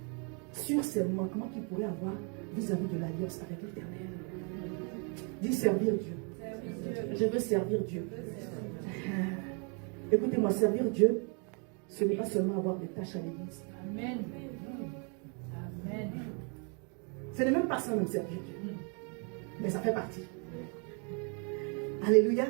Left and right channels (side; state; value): left; quieter; 36.8 dB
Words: sur ces manquements qu'il pourrait avoir vis-à-vis de l'alliance avec l'Éternel. Dis servir Dieu. Je veux servir Dieu. Écoutez-moi, servir Dieu, ce n'est pas seulement avoir des tâches à l'église. Amen. Amen. Ce n'est même pas ça, même servir Dieu. Mais ça fait partie. Alléluia.